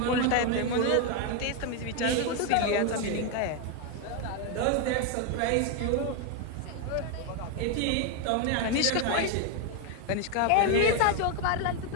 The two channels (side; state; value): both; different; correlation 0.01